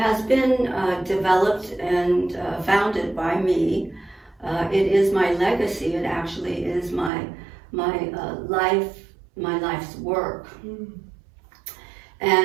been developed and founded by me. It is my legacy. It actually is my life's work.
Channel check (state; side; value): drops out; left; at 7.1 s